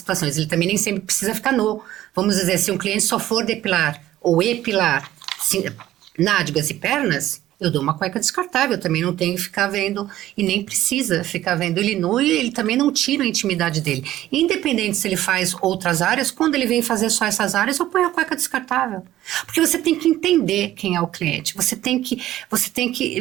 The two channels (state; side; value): quieter; left; 14.0 dB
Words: ele também nem sempre precisa ficar nu. Vamos dizer, se um cliente só for depilar ou epilar nádegas e pernas, eu dou uma cueca descartável, também não tenho que ficar vendo e nem precisa ficar vendo ele nu e ele também não tira a intimidade dele. Independente se ele faz outras áreas, quando ele vem fazer só essas áreas, eu ponho a cueca descartável. Porque você tem que entender quem é o cliente, você tem que